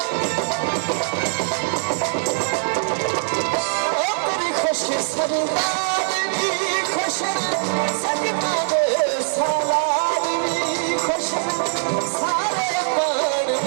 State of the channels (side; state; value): left; silent; 64 dB below the other